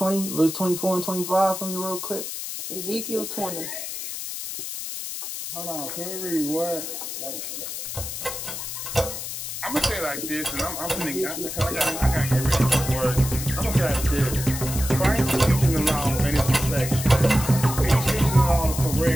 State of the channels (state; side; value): noise; left; hiss, 6 dB below the sound